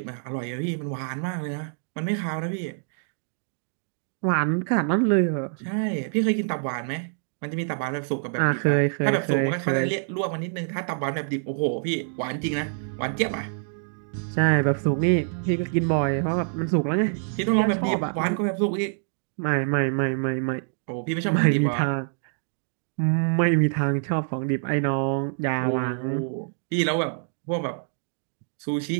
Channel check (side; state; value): left; silent; digital silence